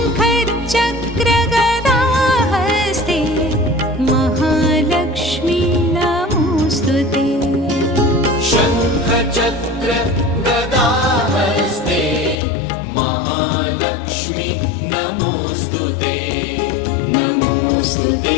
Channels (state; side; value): drops out; right; at 12.4 s